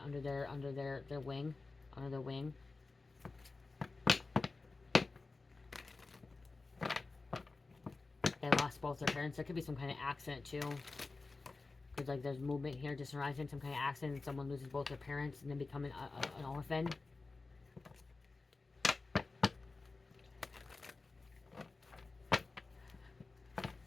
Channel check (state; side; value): quieter; right; 3.7 dB